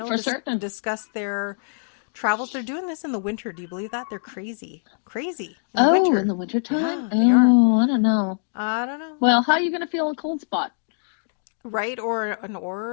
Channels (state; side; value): silent; right; digital silence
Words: for certain. Discuss their travels. They're doing this in the winter. Do you believe that? They're crazy. In the winter time. Yeah, I don't know. I don't know. Well, how are you going to feel a cold spot? Right? Or an